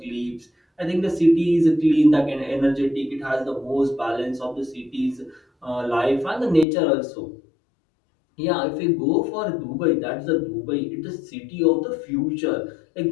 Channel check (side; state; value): right; drops out; at 6.7 s